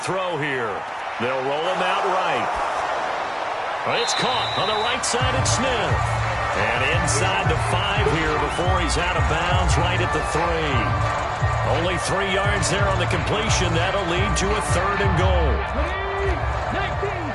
here. They'll roll him out right. It's caught on the right side at Smith. And inside the 5 here before he's out of bounds right at the 3. Only 3 yards there on the completion. That'll lead to a 3rd and goal. 19,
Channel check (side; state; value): both; identical; correlation 1.00